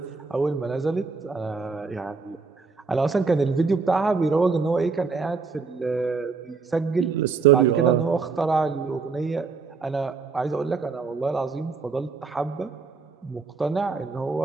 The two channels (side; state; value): left; quieter; 4.7 dB